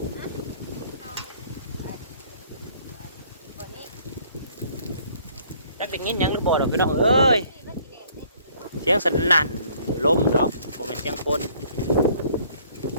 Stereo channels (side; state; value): both; inverted; correlation -0.59